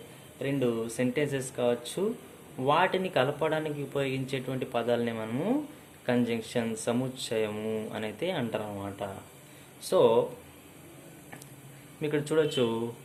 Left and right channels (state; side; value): identical; both; correlation 1.00